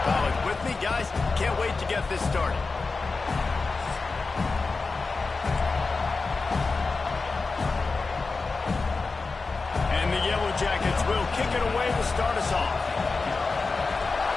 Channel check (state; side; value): quieter; right; 4.1 dB